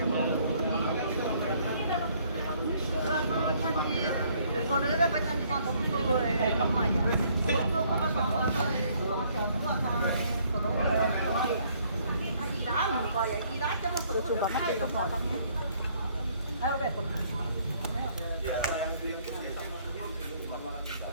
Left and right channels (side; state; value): both; inverted; correlation -0.64